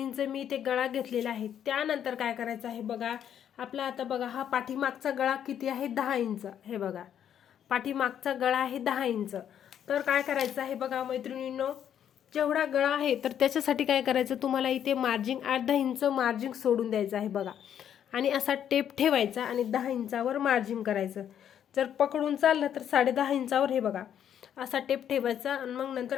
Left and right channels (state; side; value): quieter; right; 9.5 dB